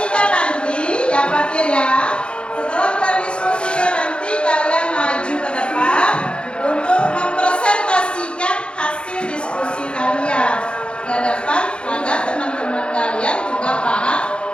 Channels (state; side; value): late; right; 0.056 ms